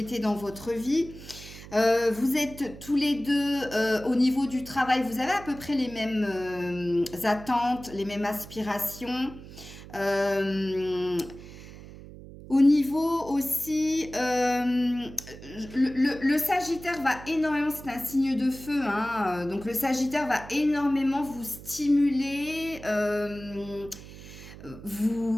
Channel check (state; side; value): noise; right; hum, 16 dB below the sound